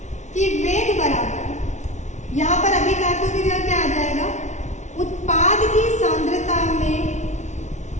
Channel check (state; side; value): late; right; 0.34 ms